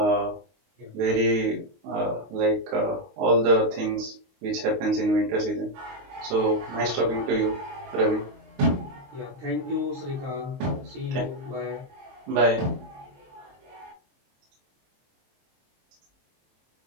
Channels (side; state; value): left; late; 23 ms